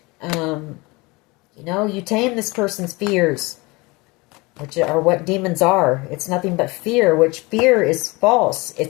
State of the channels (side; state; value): right; quieter; 24.6 dB